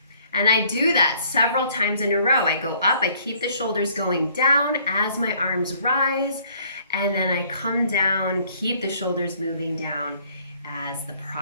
And I do that several times in a row. I go up, I keep the shoulders going down as my arms rise, and then I come down, keep the shoulders moving down as the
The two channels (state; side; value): inverted; both; correlation -0.61